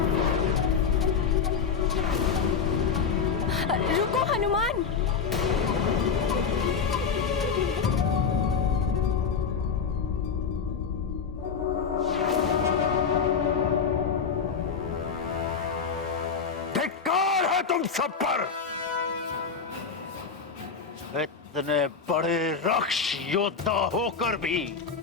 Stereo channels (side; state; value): right; quieter; 5.9 dB